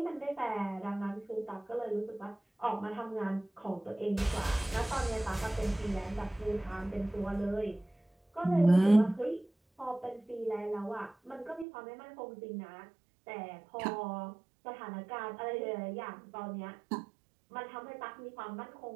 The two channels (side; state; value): left; drops out; at 11.7 s